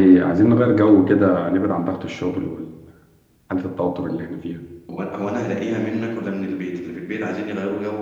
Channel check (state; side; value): identical; both; correlation 1.00